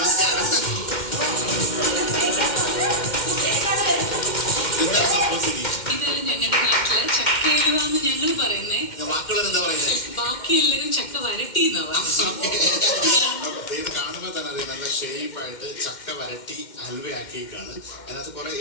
എന്താണ് സംഭവം സിനി? ഇത് ഞങ്ങളുടെ നാട്ടില് ചക്കയിലുവാന്ന് ഞങ്ങൾ പറയുന്നേ. ബാക്കിയുള്ളവർ എന്താ പറയുന്നത്? ബാക്കി എല്ലാവരും ചക്ക വരട്ടി ഇത് കാണുമ്പോൾ തന്നെ അറിയാം, നല്ല ഷേപ്പായിട്ട് ചക്ക വരട്ടി ഹൽവയാക്കിയേക്കാണ്. അതിനകത്ത് കുറെ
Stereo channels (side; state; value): right; late; 2.1 ms